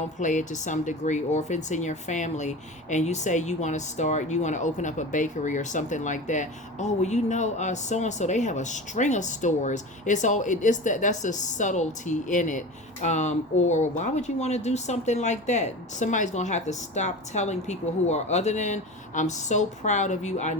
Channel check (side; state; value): both; normal; correlation 0.31